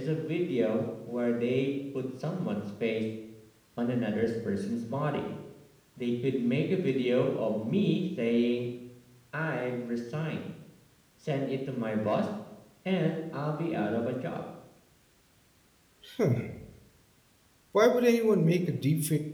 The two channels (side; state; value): both; identical; correlation 1.00